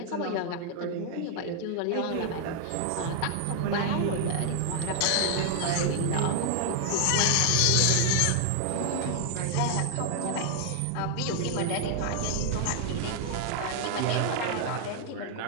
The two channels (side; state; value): both; different; correlation 0.00